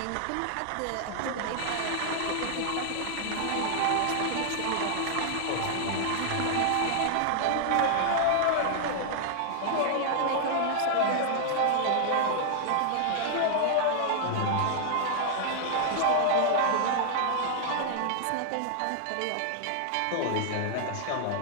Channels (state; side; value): different; both; correlation 0.00